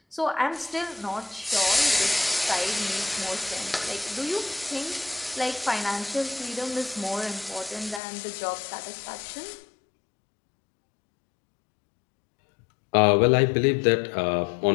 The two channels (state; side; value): drops out; right; at 8.0 s